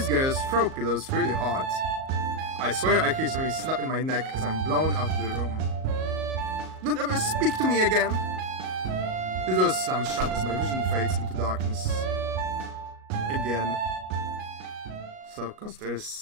girls throw pillows really hard. I swear I hear something snap in my neck as I'm blown out of the room. Don't ever speak to me again! The door slams shut as my vision fades into darkness. Again. So, cause there's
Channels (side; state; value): left; late; 38 ms